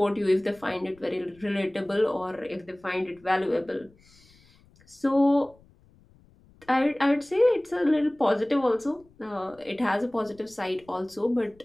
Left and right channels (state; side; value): noise; left; rumble, 29 dB below the sound